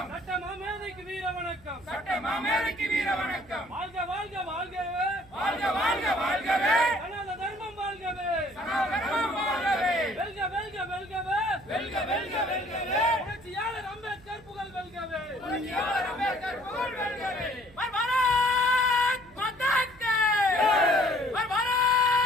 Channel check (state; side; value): noise; right; hum, 25 dB below the sound